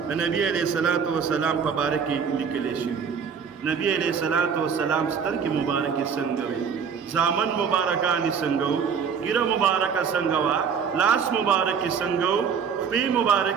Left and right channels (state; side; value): quieter; left; 6.6 dB